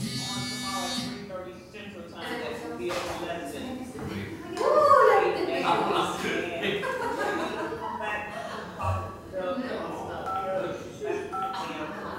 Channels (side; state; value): both; identical; correlation 1.00